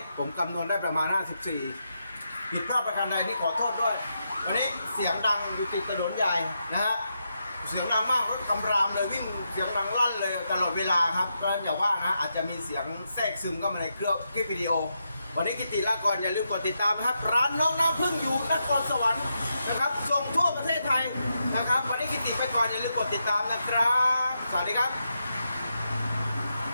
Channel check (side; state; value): both; inverted; correlation -0.84